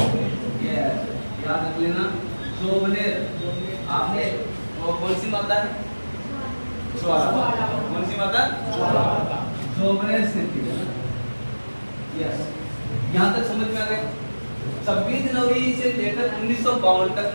ये याद रख लेना, जोबनेर। आपने वो कौन सी माता है? ज्वाला। कौन सी माता? ज्वाला। जोबनेर से थी। यस, यहाँ तक समझ में आ गया। 26 जनवरी से लेकर 1952 तक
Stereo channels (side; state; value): both; inverted; correlation -1.00